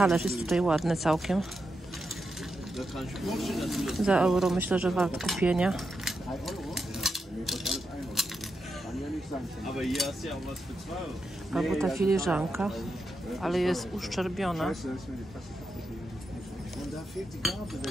jest tutaj ładny całkiem. Za euro myślę, że wart kupienia. Albo ta filiżanka, ale jest uszczerbiona.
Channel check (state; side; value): normal; both; correlation 0.86